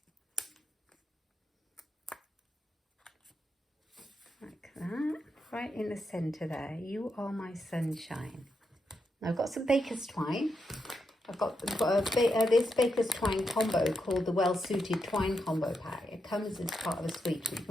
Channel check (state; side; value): normal; both; correlation 0.84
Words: Like that. Right in the centre there. You Are My Sunshine. Now I've got some baker's twine. I've got this baker's twine combo called the Well Suited Twine Combo Pack. It comes as part of a suite, but you